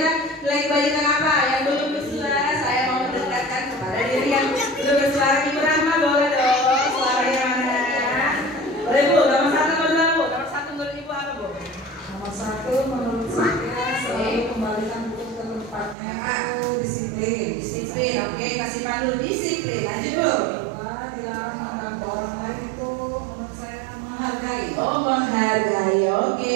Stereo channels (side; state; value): left; drops out; at 16.0 s